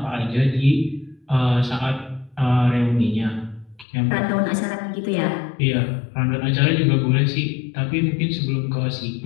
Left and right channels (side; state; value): right; drops out; at 3.9 s